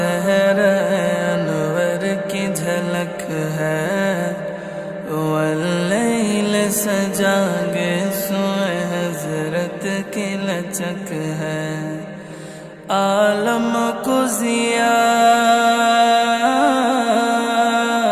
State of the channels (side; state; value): both; identical; correlation 1.00